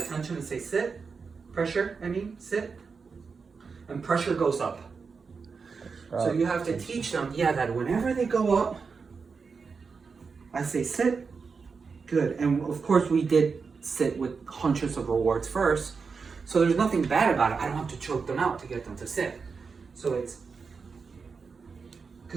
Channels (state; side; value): quieter; left; 5.1 dB